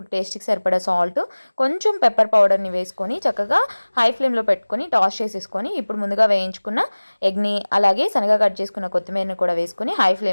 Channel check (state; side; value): inverted; both; correlation -1.00